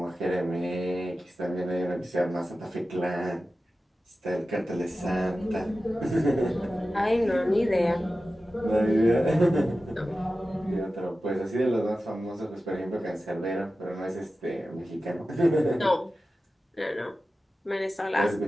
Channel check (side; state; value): both; normal; correlation 0.94